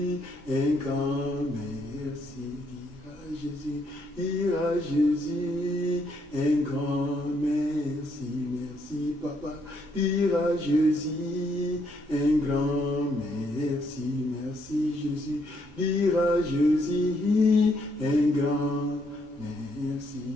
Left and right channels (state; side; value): normal; both; correlation 0.73